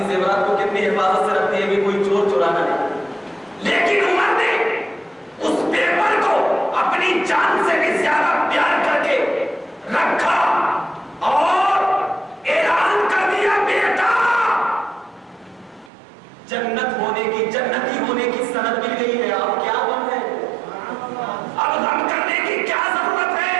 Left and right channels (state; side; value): drops out; left; at 15.9 s